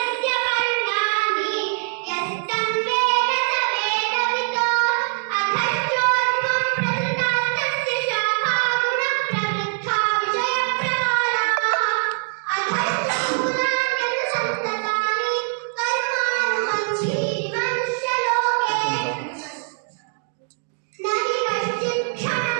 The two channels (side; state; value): left; silent; 57 dB below the other